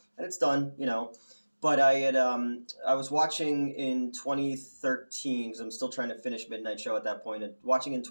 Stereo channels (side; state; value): both; inverted; correlation -1.00